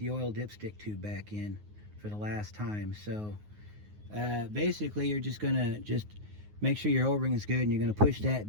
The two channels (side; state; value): left; late; 9.5 ms